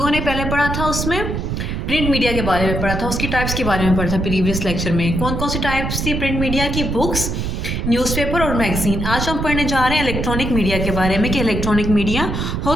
ने पहले पढ़ा था उसमें प्रिंट मीडिया के बारे में पढ़ा था, उसकी टाइप्स के बारे में पढ़ा था प्रीवियस लेक्चर में. कौन कौन सी टाइप्स थी प्रिंट मीडिया की? बुक्स, न्यूज़पेपर और मैगजीन. आज हम पढ़ने जा रहे हैं इलेक्ट्रॉनिक मीडिया के बारे में कि इलेक्ट्रॉनिक मीडिया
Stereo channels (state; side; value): noise; right; rumble, 2 dB below the sound